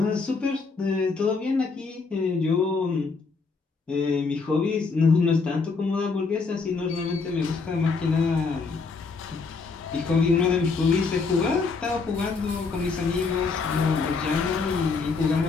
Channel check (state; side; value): quieter; right; 4.5 dB